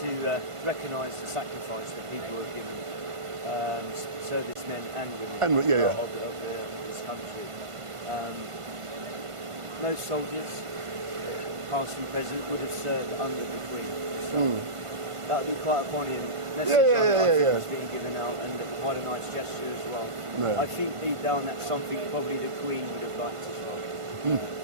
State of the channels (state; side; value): late; left; 1.5 ms